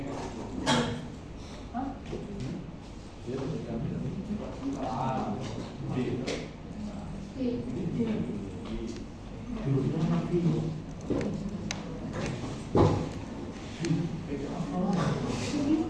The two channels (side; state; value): both; identical; correlation 1.00